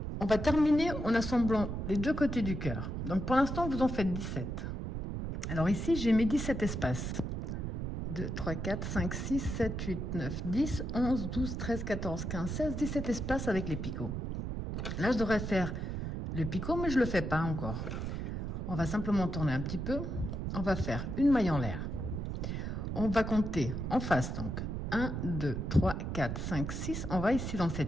on va terminer en assemblant les deux côtés du cœur. Donc, pour l'instant, vous en faites 17. Alors ici, j'ai mes 17 espaces. 2, 3, 4, 5, 6, 7, 8, 9, 10, 11, 12, 13, 14, 15, 16, 17 espaces avec les picots. Là, je devrais faire le picot, mais je le fais pas encore. On va simplement tourner un petit peu. On va faire une maille en l'air. On va compter en face, donc 1, 2, 3, 4, 5, 6. On va ici dans le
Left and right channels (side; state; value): right; noise; rumble, 4 dB below the sound